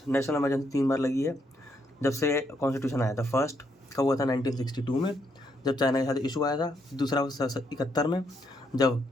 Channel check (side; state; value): both; normal; correlation 0.75